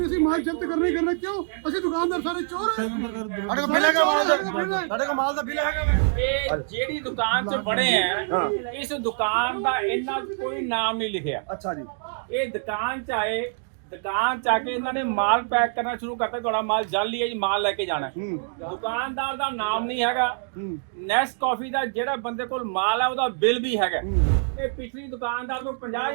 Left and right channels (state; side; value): silent; left; 62 dB below the other